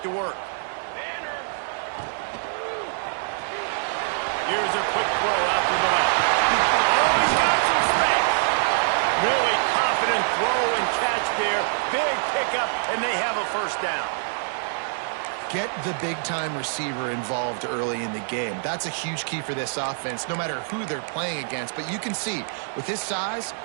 to work. Here's a quick throw out to the left. Oh, he's got some space. Really confident throw and catch there. Big pickup, and they have a first down. Get the big-time receiver involved early in the game. That's a huge key for this offense, no matter who they're playing against. But you can see, with his size,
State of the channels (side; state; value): left; silent; digital silence